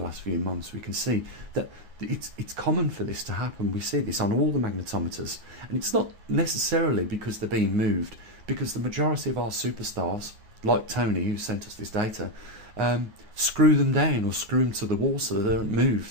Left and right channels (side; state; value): left; late; 9.5 ms